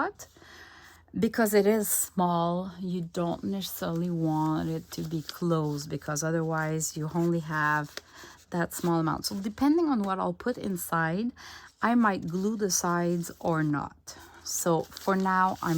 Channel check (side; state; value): both; identical; correlation 1.00